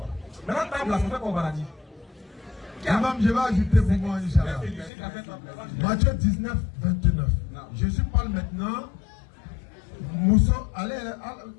Maintenant, table, là, ça fait qu'au paradis. Imam, je vais ajouter pour moi, Inch'Allah. Matthieu 19, 29. Jésus parle maintenant. Moussa, allez,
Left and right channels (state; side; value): drops out; right; at 4.9 s